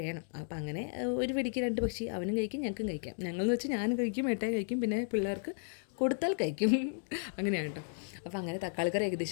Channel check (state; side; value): silent; right; digital silence